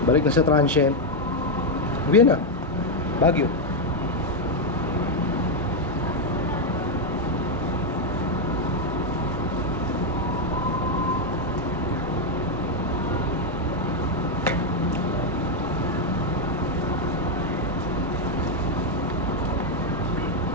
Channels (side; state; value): both; normal; correlation 0.02